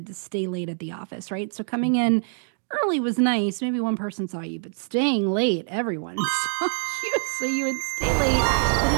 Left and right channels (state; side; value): silent; left; 62 dB below the other